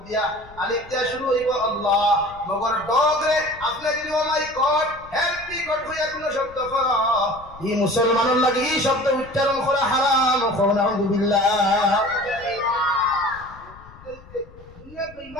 দিয়া, আলিফ দিয়া শুরু হইব আল্লাহ। মগর ডগরে আপনি যদি ও মাই গড হেল্প মি গড হইয়া কোন শব্দ কর, এই মুসলমানের লাগে এই শব্দ উচ্চারণ করা হারাম। নাউযুবিল্লাহ।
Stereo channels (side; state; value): left; noise; rumble, 21 dB below the sound